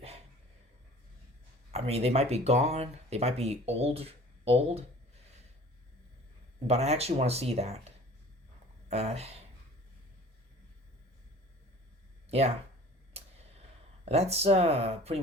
might be gone. They might be old. But I actually want to see that. Yeah. That's pretty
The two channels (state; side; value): normal; both; correlation 0.46